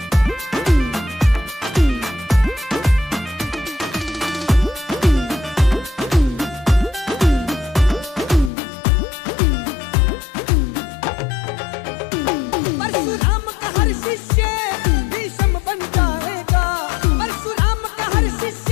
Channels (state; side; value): drops out; right; at 8.5 s